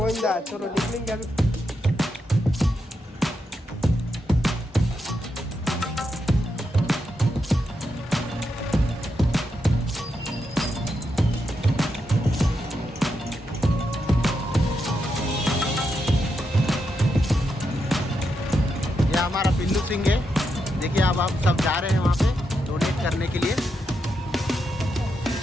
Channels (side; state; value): both; normal; correlation 0.84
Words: चलो निकलेंगे. हमारा पिल्लू सिंह है. देखिए अब आप सब जा रहे हैं वहाँ पे डोनेट करने के लिए.